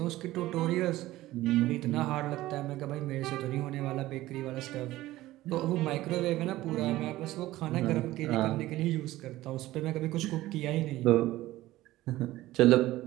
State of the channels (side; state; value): left; quieter; 16.5 dB